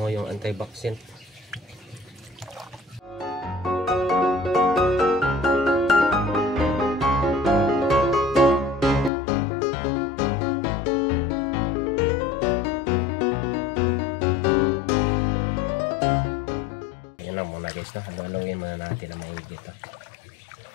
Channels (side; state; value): right; drops out; at 9.1 s